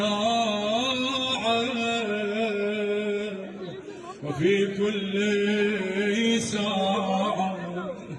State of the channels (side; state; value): both; identical; correlation 1.00